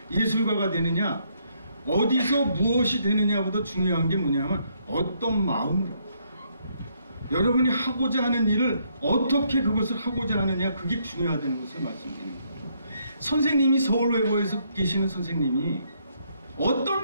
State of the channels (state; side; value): inverted; both; correlation -0.72